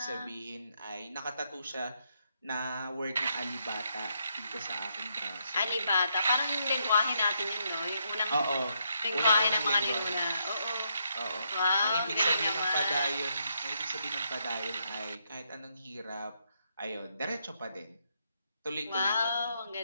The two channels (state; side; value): inverted; both; correlation -0.77